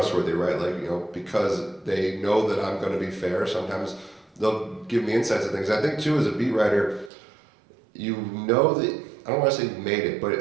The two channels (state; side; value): drops out; left; at 7.1 s